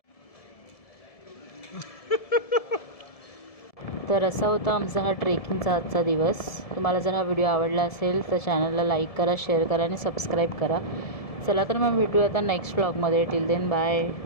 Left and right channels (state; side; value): late; right; 1.7 ms